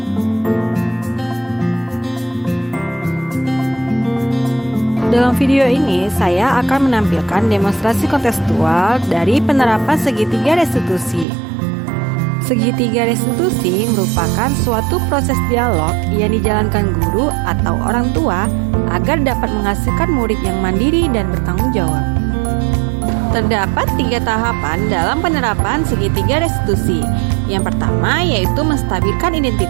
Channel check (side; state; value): left; drops out; at 11.2 s